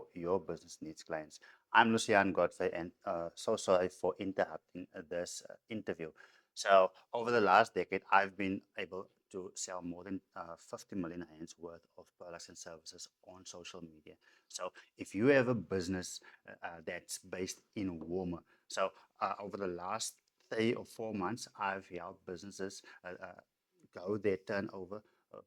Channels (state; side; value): identical; both; correlation 1.00